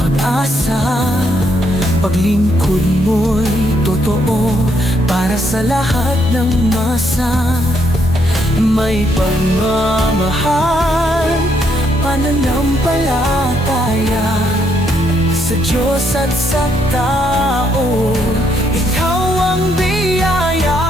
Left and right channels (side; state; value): both; normal; correlation 0.74